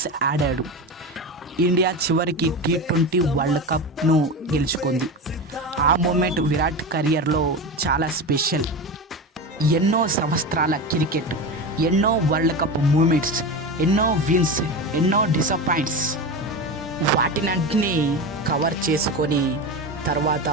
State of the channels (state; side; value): normal; both; correlation 0.23